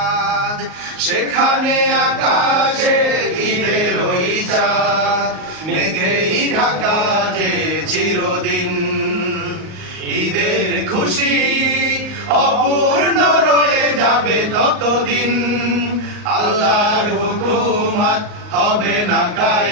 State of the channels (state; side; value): late; left; 38 ms